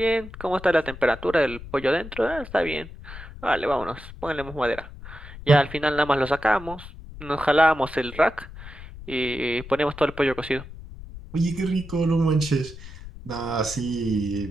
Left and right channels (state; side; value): noise; left; rumble, 14 dB below the sound